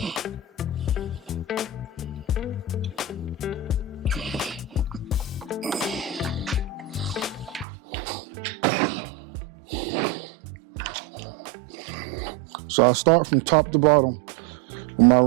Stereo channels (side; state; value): left; drops out; at 7.7 s